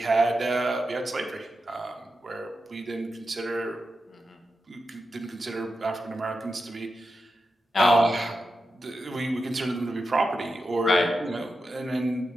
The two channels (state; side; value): normal; both; correlation 0.89